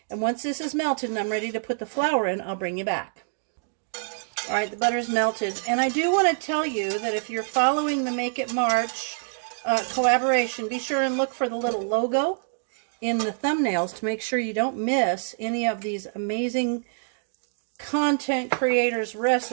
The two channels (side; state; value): left; silent; digital silence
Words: And once this is melted and I'm ready to put the flour in, I'll bring you back. All right, the butter's melted. And I do want to tell you that if you're following the Make It March collaboration, be sure and look for the little logo in the thumbnails to make sure you don't miss any of these amazing content creators'